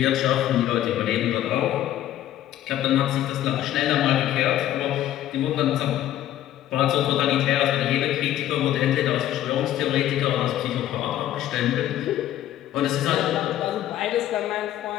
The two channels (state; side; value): quieter; right; 12.6 dB